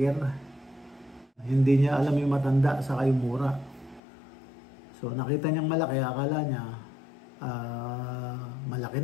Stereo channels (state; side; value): drops out; right; at 4.0 s